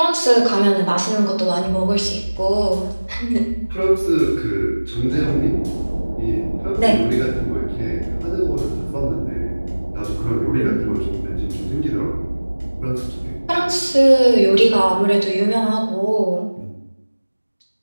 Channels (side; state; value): both; inverted; correlation -1.00